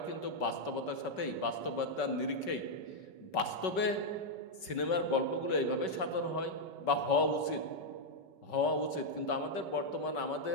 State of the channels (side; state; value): right; late; 5.3 ms